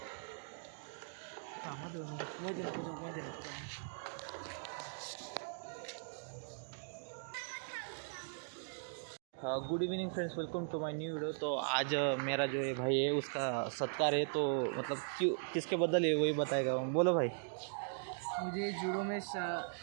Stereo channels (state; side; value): silent; left; digital silence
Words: Good evening friends, welcome to my new video. तो आज मेरा जो ये भाई है उसका सत्कार है. तो मतलब क्यों किसके बदल है वही बताएगा. बोलो भाई. मुझे जूडो में